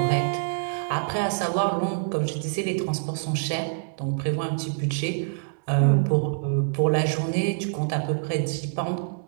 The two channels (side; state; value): left; silent; 61 dB below the other